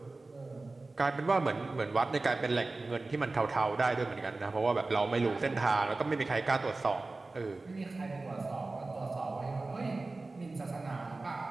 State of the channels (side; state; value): left; quieter; 3.4 dB